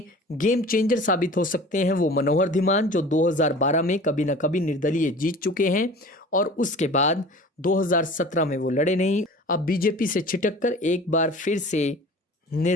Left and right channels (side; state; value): both; normal; correlation 0.42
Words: गेम चेंजर साबित हो सकते हैं वो मनोहर धीमान, जो 2012 में कभी ना कभी निर्दलीय जीत चुके हैं और उसके बाद 2017 में वो लड़े नहीं। अब बीजेपी से छिटककर एक बार फिर से